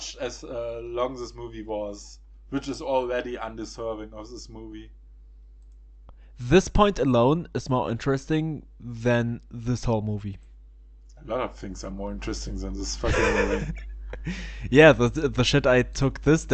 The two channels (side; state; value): both; identical; correlation 1.00